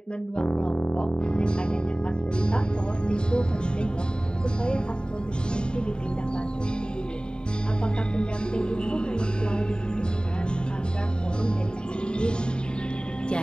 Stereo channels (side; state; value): right; late; 0.049 ms